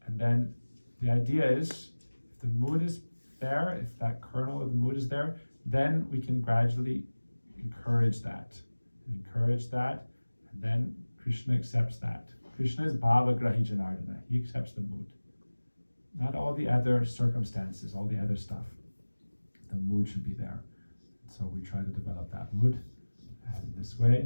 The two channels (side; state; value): both; inverted; correlation -1.00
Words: and then the idea is, if the mood is there, if that kernel of the mood is there, then we can gradually encourage that, and then Krishna accepts that. Krishna is Bhava Grahi Janardana. He accepts the mood. Not all the other circumstances, all the other stuff. The mood should be there. So we try to develop that mood. And this